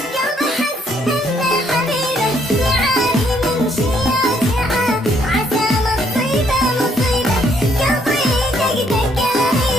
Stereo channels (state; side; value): normal; both; correlation 0.69